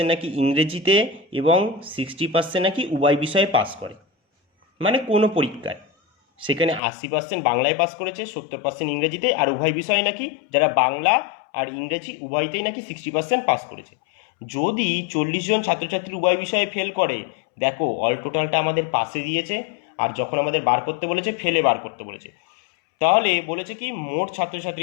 নাকি ইংরেজিতে এবং 60% নাকি উভয় বিষয়ে পাস করে। মানে কোনো পরীক্ষায় সেখানে 80% বাংলায় পাস করেছে, 70% ইংরেজিতে, আর উভয় বিষয়ে নাকি যারা বাংলা আর ইংরেজি উভয়তেই নাকি 60% পাস করেছে। যদি 40 জন ছাত্রছাত্রী উভয় বিষয়ে ফেল করে, দেখো অল টোটালটা আমাদের পাশে দিয়েছে আর যখন আমাদের বার করতে বলেছে ফেলে বার করতে বলেছে। তাহলে বলেছে কি মোট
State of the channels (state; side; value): drops out; right; at 6.8 s